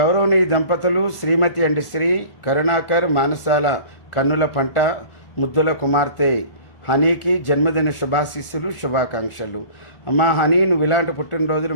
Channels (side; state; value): right; late; 1.4 ms